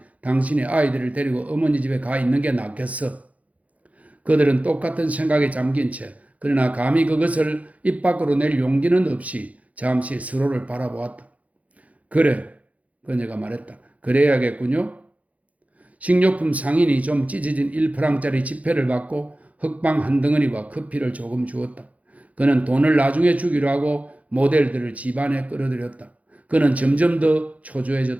당신이 아이들을 데리고 어머니 집에 가 있는 게 낫겠어. 그들은 똑같은 생각에 잠긴 채 그러나 감히 그것을 입 밖으로 낼 용기는 없이 잠시 서로를 바라보았다. 그래, 그녀가 말했다. 그래야겠군요. 식료품 상인이 좀 찢어진 1프랑짜리 지폐를 받고 흑방 한 덩어리와 커피를 조금 주었다. 그는 돈을 나중에 주기로 하고 모델들을 집안에 끌어들였다. 그는 점점 더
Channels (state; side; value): late; left; 0.068 ms